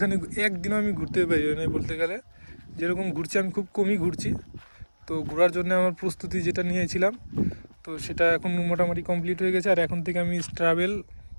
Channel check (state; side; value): inverted; both; correlation -1.00